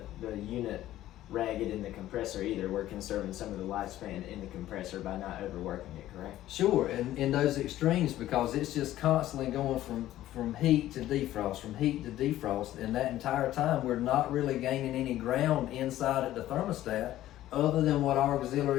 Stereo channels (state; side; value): quieter; right; 13.9 dB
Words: unit ragged in the compressor either. We're conserving some of the lifespan in the compressor by not overworking it, correct? Sure, and in those extremes, because it's just constantly going from heat to defrost, from heat to defrost, and that entire time we're not really gaining any ground inside at the thermostat other than what our